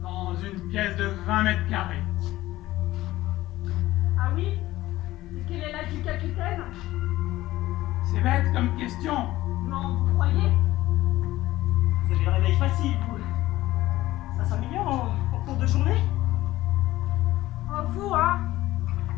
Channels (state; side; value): quieter; right; 16.4 dB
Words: dans une pièce de 20 mètres carrés. Ah oui? Et quel est l'âge du capitaine? C'est bête comme question. Non, vous croyez? Vous avez le réveil facile, vous. Ça s'améliore en cours de journée? Oh, vous, hein?